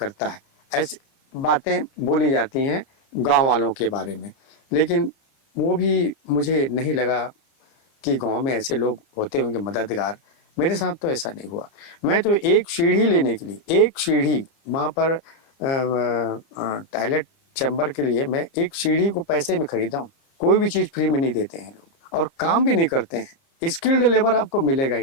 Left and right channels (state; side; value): late; right; 29 ms